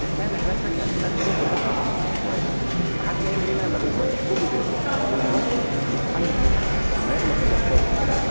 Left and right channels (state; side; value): inverted; both; correlation -1.00